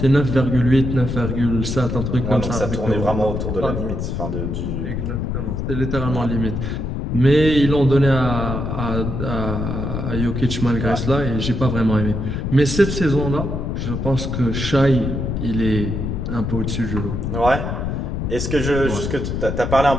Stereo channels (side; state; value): left; noise; rumble, 3 dB below the sound